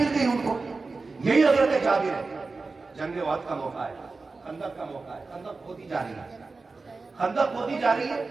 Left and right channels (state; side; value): quieter; left; 3.9 dB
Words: گئی ان کو۔ یہی حضرت جابر ہے۔ جنگ احد کا موقع ہے، خندق کا موقع ہے، خندق کھودی جا رہی ہے، خندق کھودی جا رہی ہے،